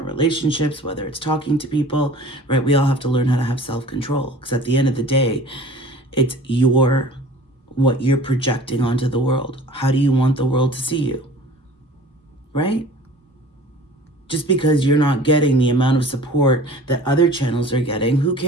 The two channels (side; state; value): both; normal; correlation 0.44